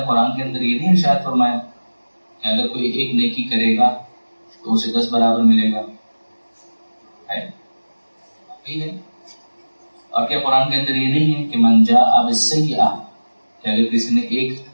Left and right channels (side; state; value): both; inverted; correlation -1.00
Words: قرآن کے اندر یہ نہیں ارشاد فرمایا کہ اگر کوئی ایک نیکی کرے گا تو اسے 10 برابر ملے گا؟ ہے. اور کیا قرآن کے اندر یہ نہیں ہے کہ من جاء بالسیئۃ، کہ اگر کسی نے ایک